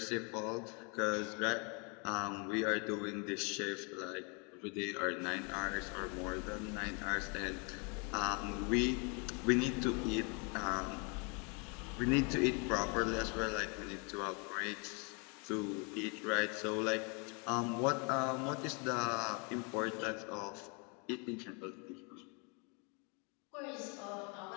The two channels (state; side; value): quieter; right; 33.8 dB